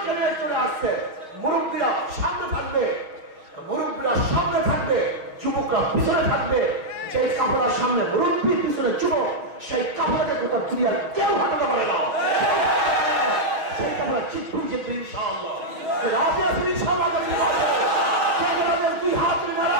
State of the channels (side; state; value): left; late; 6.5 ms